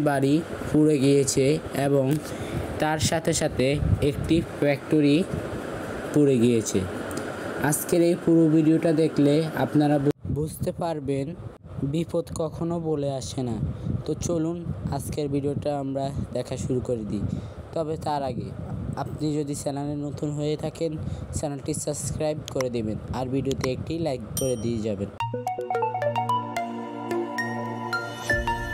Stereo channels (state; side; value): identical; both; correlation 1.00